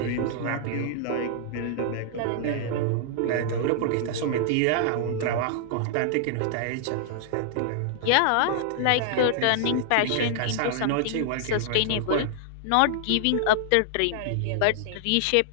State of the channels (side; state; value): both; different; correlation -0.01